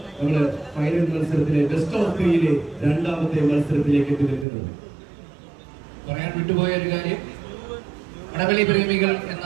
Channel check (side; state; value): left; drops out; at 4.5 s